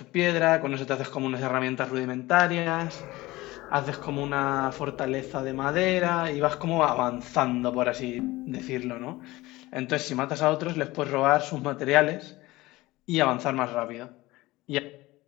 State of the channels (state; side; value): quieter; right; 19.4 dB